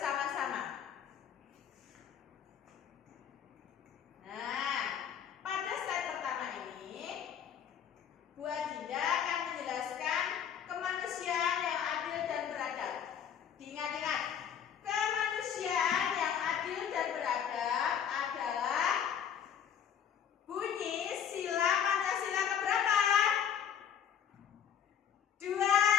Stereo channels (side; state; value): right; quieter; 8.6 dB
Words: Nah, pada slide pertama ini Bu Adinda akan menjelaskan kemanusiaan yang adil dan beradab. Diingat-ingat, kemanusiaan yang adil dan beradab adalah bunyi sila Pancasila keberapa? 2,